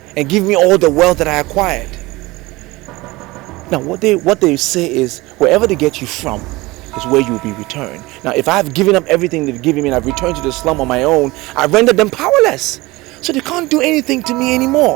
and give me all the wealth that I acquired. Now what they say is, wherever they get you from is where you will be returned. Now if I've given up everything they've given me and I've returned to the slum on my own, I've rendered them powerless. So they can't do anything to me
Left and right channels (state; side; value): quieter; left; 21.3 dB